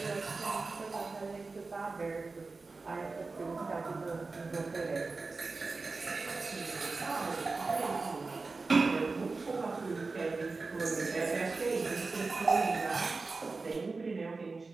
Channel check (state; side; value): quieter; left; 3.9 dB